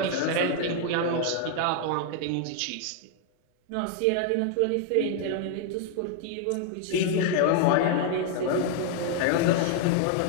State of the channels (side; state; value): both; different; correlation 0.00